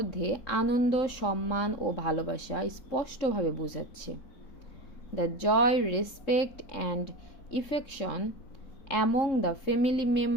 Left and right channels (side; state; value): right; late; 3.7 ms